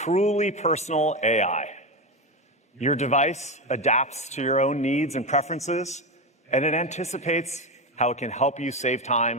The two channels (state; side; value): normal; both; correlation 0.15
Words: personal AI. Your device adapts to your own needs and preferences, and it anticipates how it can help you save